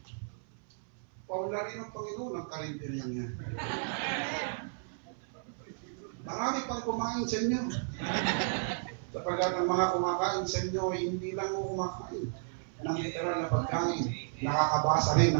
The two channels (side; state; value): left; silent; 56 dB below the other